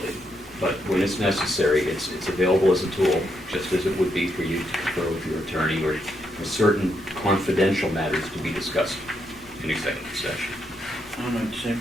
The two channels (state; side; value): normal; both; correlation 0.79